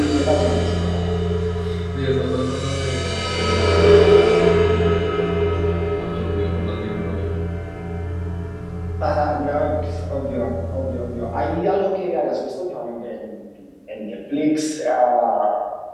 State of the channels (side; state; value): both; identical; correlation 1.00